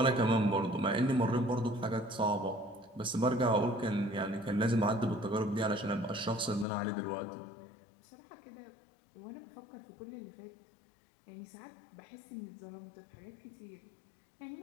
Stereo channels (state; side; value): drops out; right; at 6.7 s